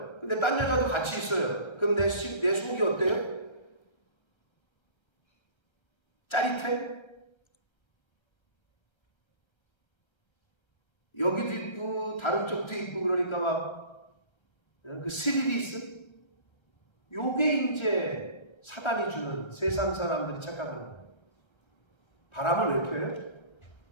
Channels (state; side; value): late; right; 1.3 ms